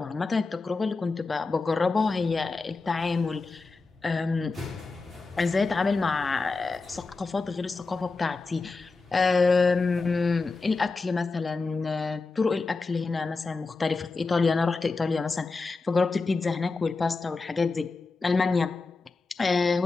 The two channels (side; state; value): right; quieter; 4.0 dB